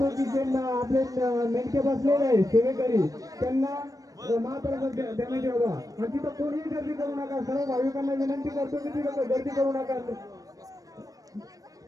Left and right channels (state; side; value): late; left; 0.17 ms